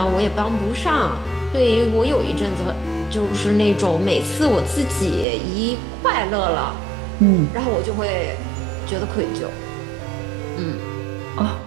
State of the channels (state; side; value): drops out; left; at 5.2 s